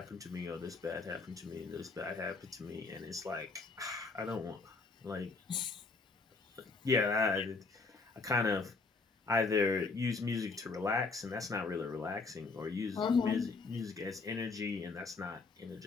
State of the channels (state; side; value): quieter; right; 4.0 dB